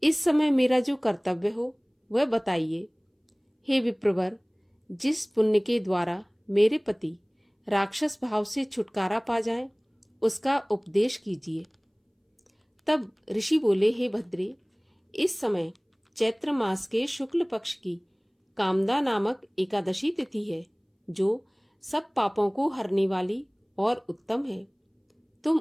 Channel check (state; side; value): identical; both; correlation 1.00